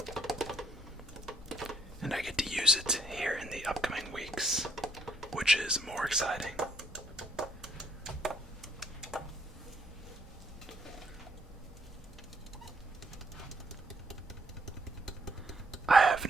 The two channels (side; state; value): both; normal; correlation 0.69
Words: And I get to use it here in the upcoming weeks, which is more exciting. I have